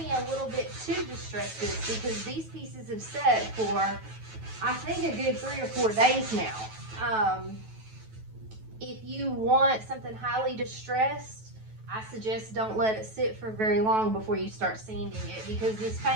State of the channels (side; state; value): left; late; 9.2 ms